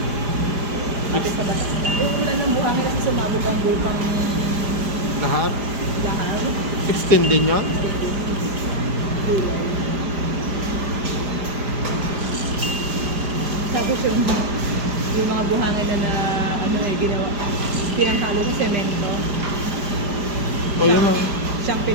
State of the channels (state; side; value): late; left; 5.0 ms